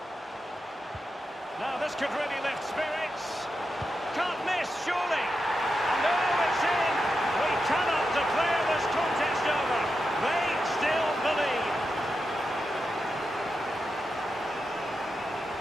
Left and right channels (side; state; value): both; normal; correlation 0.88